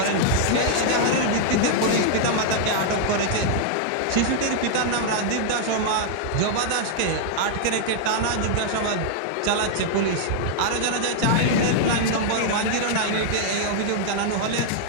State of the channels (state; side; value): different; both; correlation -0.01